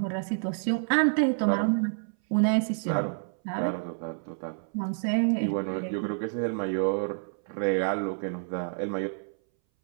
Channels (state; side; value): silent; left; 59 dB below the other